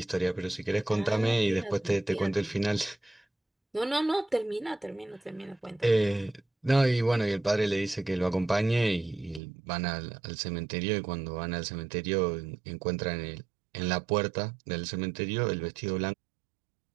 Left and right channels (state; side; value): drops out; left; at 9.4 s